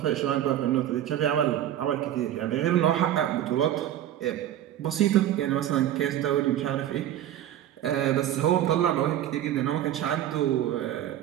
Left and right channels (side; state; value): left; quieter; 11.8 dB